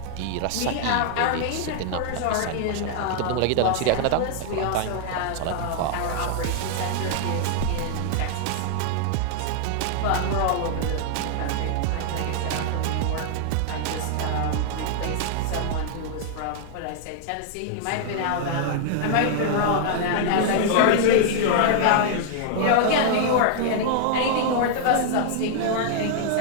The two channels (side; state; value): both; different; correlation -0.01